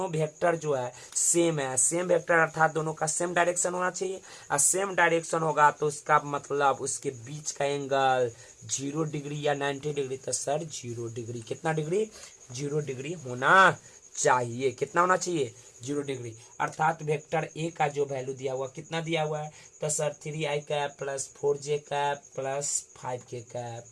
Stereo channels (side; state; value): both; identical; correlation 1.00